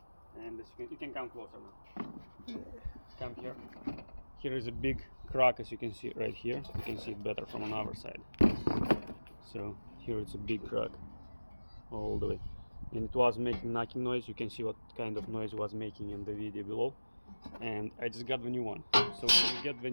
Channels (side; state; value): both; inverted; correlation -1.00